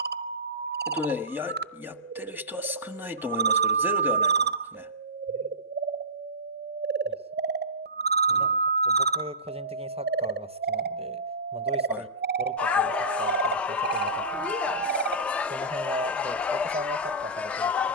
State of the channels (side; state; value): both; normal; correlation -0.18